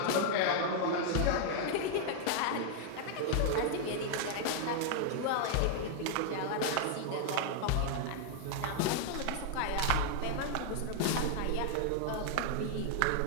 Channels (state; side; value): different; both; correlation 0.00